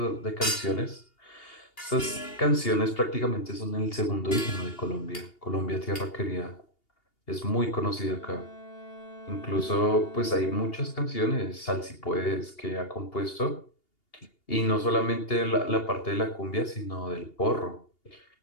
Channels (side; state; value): right; late; 2.8 ms